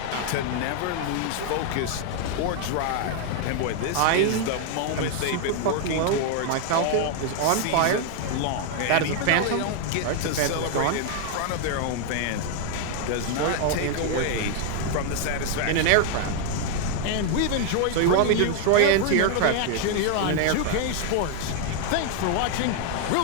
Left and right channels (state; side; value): different; both; correlation 0.00